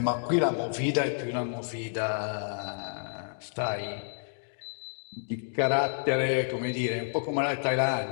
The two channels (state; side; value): silent; right; digital silence